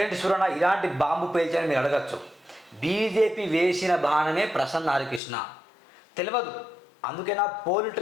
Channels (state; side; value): drops out; right; at 5.2 s